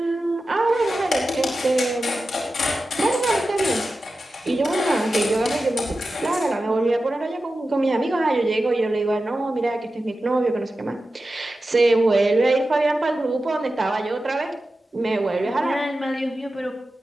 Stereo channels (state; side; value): normal; both; correlation 0.93